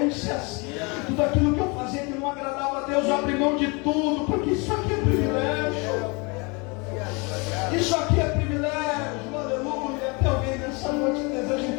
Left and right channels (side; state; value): right; quieter; 29.4 dB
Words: tudo aquilo que eu fazia que não agradava a Deus, eu abri mão de tudo, porque isso aqui é privilégio. Isso aqui é privilégio, aleluia. Tem alguém nessa noite que deseja